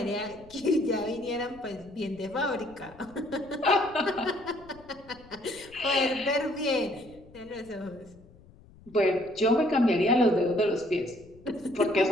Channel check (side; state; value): left; noise; rumble, 24 dB below the sound